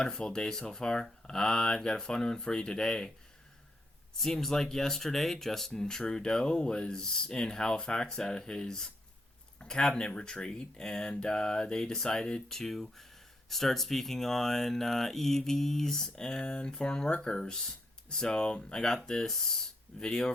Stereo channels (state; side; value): normal; both; correlation 0.78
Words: day so far. I've got a fun one for you today. Seems like yesterday, Justin Trudeau was in Halifax at his cabinet retreat, and they decided to start speaking on EVs and foreign workers. So, I got this video